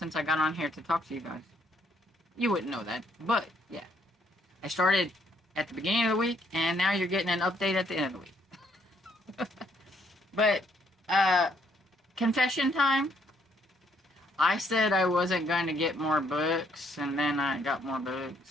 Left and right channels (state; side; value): normal; both; correlation 0.69